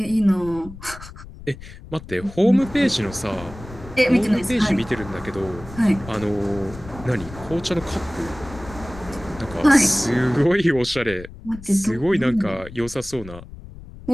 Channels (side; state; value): left; noise; rumble, 15 dB below the sound